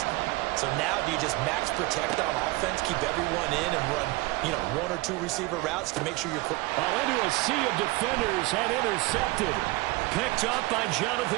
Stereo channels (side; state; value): left; quieter; 21.6 dB